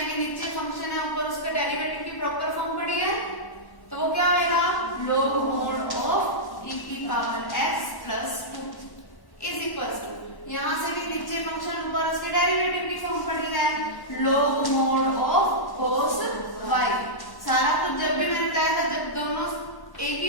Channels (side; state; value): right; late; 1.1 ms